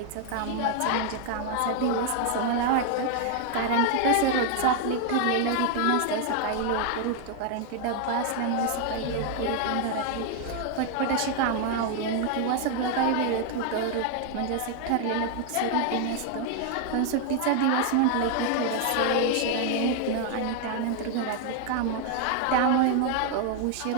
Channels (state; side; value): different; both; correlation 0.00